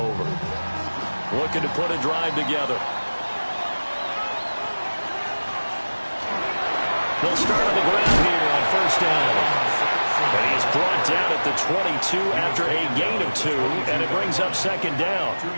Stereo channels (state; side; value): inverted; both; correlation -1.00